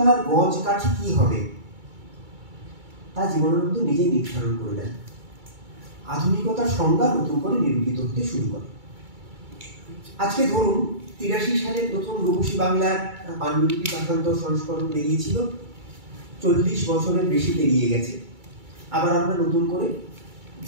গজ কাঠি কি হবে তা জীবনানন্দ নিজেই নির্ধারণ করে দেন। আধুনিকতার সংজ্ঞা নতুন করে নিরূপিত হতে শুরু করে। আজকে ধরুন 83 সালে প্রথম রূপসী বাংলার পাণ্ডুলিপি পাঠান্তর সংস্করণ বেরিয়েছিল, 40 বছরের বেশি পেরিয়ে গেছে। আবার আমরা নতুন করে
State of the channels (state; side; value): late; left; 2.3 ms